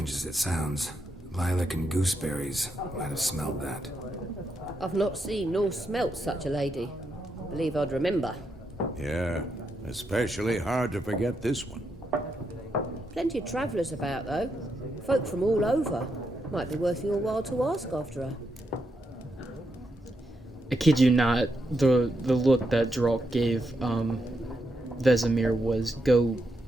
as it sounds, lilac and gooseberries might have smelled that. I've not seen nor smelt such a lady. Believe I'd remember. Yeah, especially hard to forget this one. Plenty of travellers about, though. Folk from all over. Might be worth your while to ask after her. I kid you not, the look that Drake gave Vesemir was, go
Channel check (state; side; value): normal; both; correlation 0.82